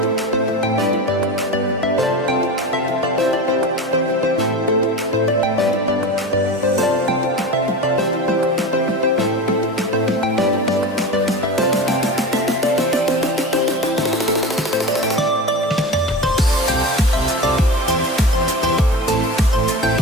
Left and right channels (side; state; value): both; normal; correlation 0.29